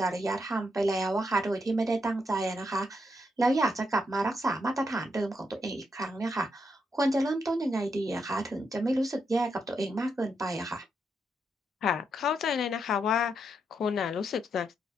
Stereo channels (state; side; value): normal; both; correlation 0.81